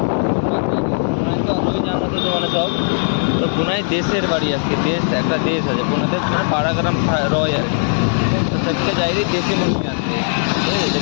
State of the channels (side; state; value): right; silent; digital silence